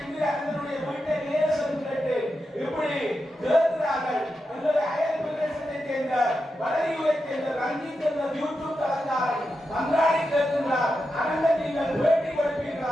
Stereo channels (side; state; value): both; normal; correlation 0.88